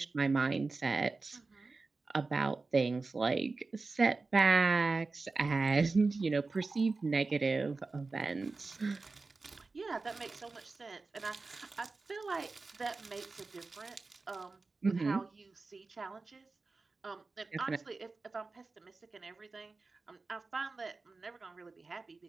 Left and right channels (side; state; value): left; quieter; 3.8 dB